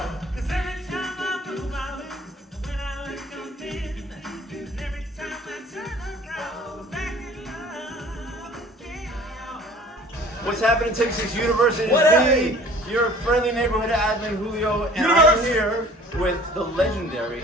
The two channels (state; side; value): normal; both; correlation 0.48